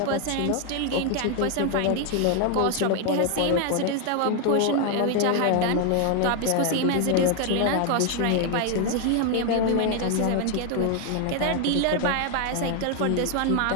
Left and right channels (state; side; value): different; both; correlation 0.01